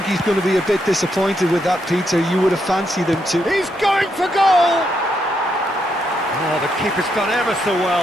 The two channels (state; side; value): normal; both; correlation 0.79